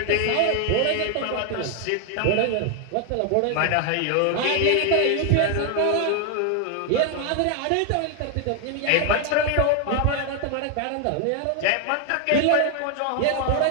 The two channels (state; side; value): different; both; correlation 0.00